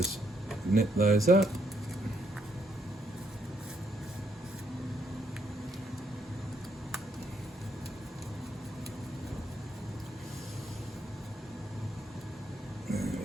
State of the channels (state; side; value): normal; both; correlation 0.74